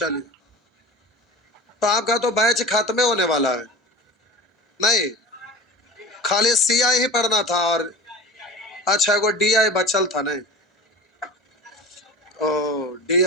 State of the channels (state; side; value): normal; both; correlation 0.33